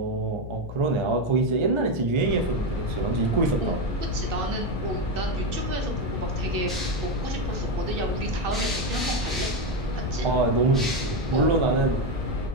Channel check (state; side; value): noise; left; hum, 10 dB below the sound